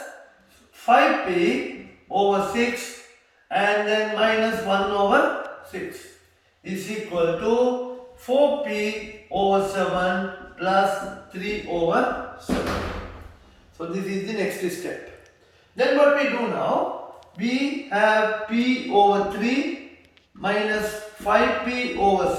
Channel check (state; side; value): identical; both; correlation 1.00